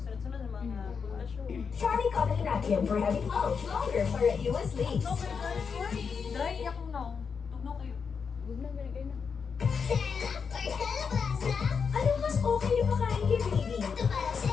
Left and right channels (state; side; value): quieter; right; 5.9 dB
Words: ng mga pundasyon. Charlie Comic Nakium for heavy flow, longer for reduced leaks. No, pero dry akong now. Tugno kayo. Huwag na, ganyan kayo na. Ano mas okay na pakain kay baby?